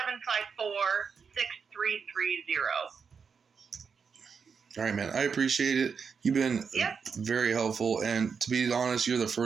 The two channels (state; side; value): quieter; left; 6.0 dB